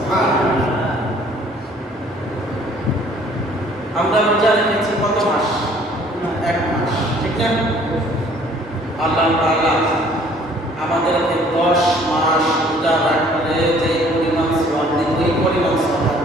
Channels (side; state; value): both; normal; correlation 0.57